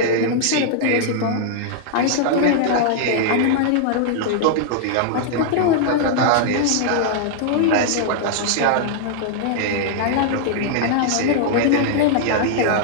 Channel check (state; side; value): different; both; correlation -0.01